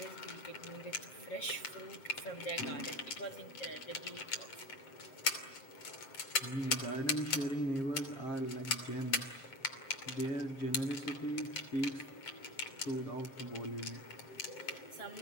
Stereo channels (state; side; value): late; right; 7.5 ms